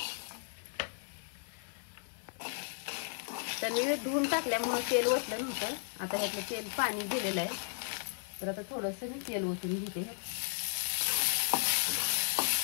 तर मी धुवून टाकल्यामुळे तेल ओतलं नव्हतं। आता ह्यातलं तेल पाणी दिलेलं आहे। तर आता थोडंसं मी तेल ओतून घेते।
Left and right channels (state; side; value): silent; right; 54 dB below the other